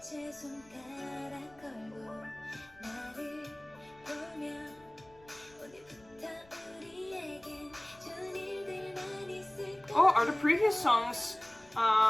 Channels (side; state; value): left; noise; rumble, 27 dB below the sound